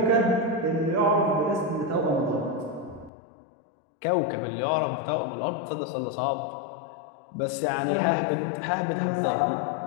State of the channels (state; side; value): drops out; right; at 3.1 s